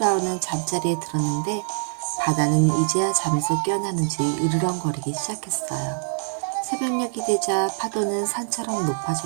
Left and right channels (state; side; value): silent; left; digital silence